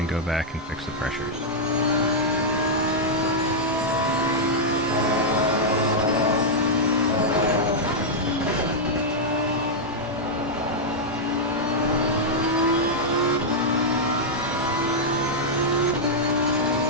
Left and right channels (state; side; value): normal; both; correlation -0.06